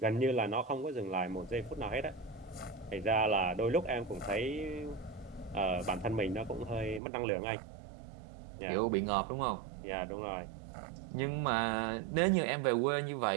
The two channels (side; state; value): left; drops out; at 7.0 s